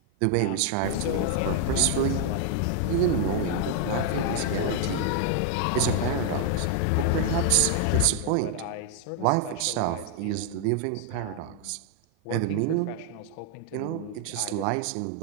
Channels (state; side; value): different; both; correlation 0.00